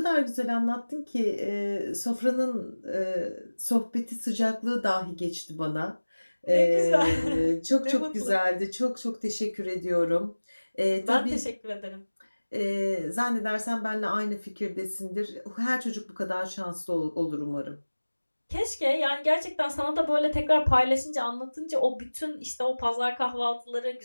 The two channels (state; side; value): inverted; both; correlation -1.00